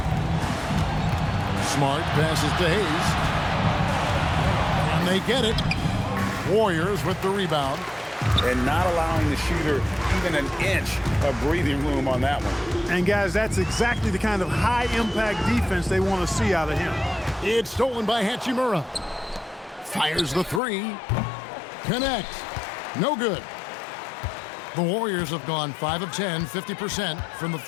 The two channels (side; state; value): right; drops out; at 20.6 s